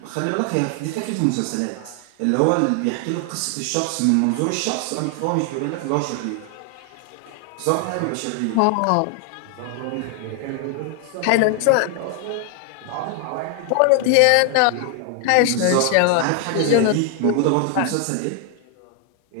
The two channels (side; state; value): both; different; correlation 0.00